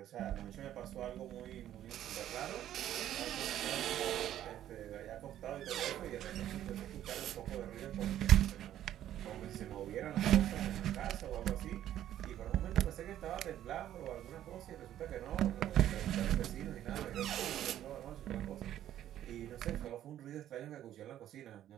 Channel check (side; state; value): left; quieter; 11.9 dB